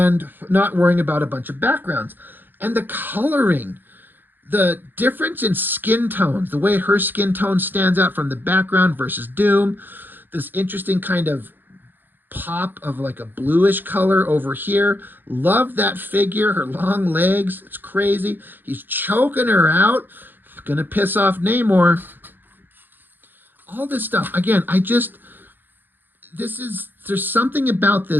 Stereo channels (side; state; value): left; late; 0.092 ms